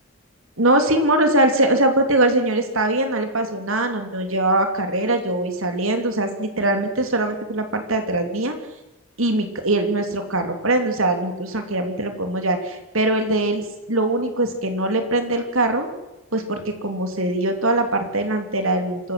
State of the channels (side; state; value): both; normal; correlation -0.15